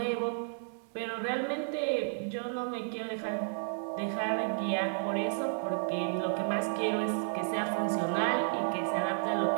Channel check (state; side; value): silent; left; digital silence